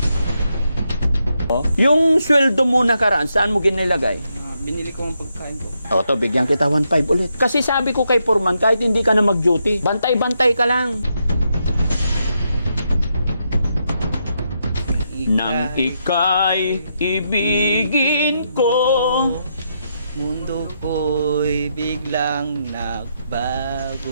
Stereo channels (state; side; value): inverted; both; correlation -0.81